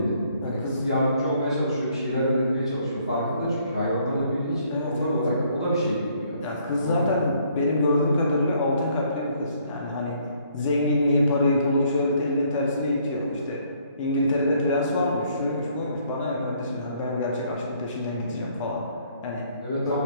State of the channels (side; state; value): both; inverted; correlation -0.65